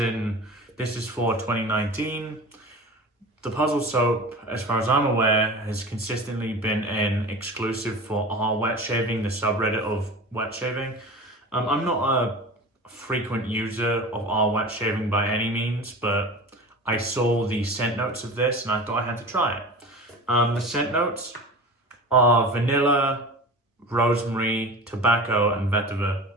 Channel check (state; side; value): normal; both; correlation 0.34